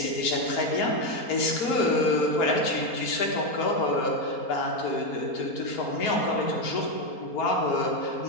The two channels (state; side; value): late; right; 4.3 ms